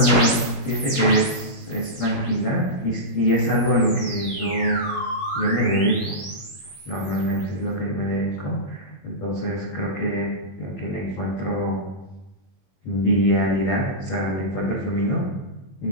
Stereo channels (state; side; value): late; right; 21 ms